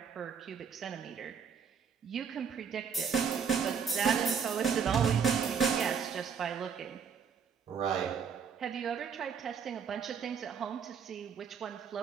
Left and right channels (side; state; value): left; quieter; 6.7 dB